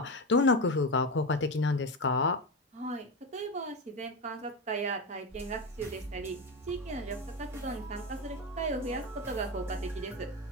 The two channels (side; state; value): both; normal; correlation 0.18